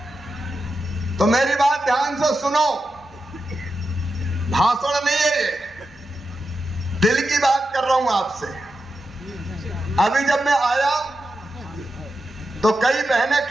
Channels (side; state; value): both; normal; correlation 0.89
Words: तो मेरी बात ध्यान से सुनो, भाषण नहीं है ये, दिल की बात कर रहा हूं आपसे। अभी जब मैं आया तो कई बहनें